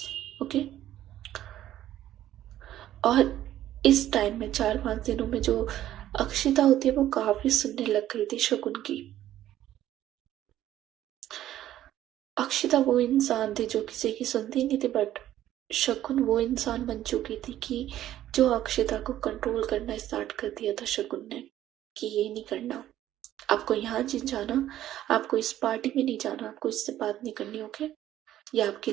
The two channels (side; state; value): left; quieter; 12.7 dB